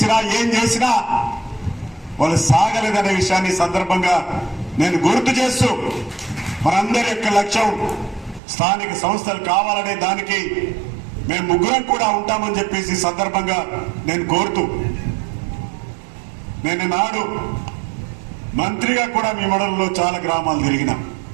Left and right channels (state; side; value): drops out; left; at 8.4 s